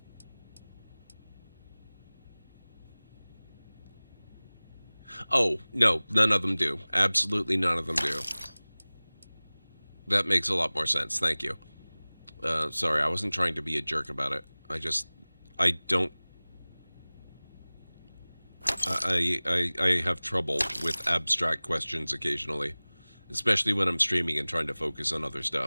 Oh, no, none of them do. Absolutely none of them do. That makes a lot more sense, thank you. Sorry, I wasn't trying to be a jerk about it. I don't... I have trouble with abstract questions occasionally. Especially when I'm streaming and trying to focus on other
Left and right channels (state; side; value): inverted; both; correlation -1.00